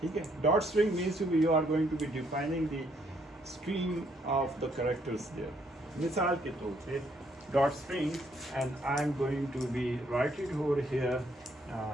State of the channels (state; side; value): normal; both; correlation 0.70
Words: ठीक है? Dot string means to be you are going to be defining the stream of the characters there. मिसाल के तौर पे dot string, and I'm going to be write it over here.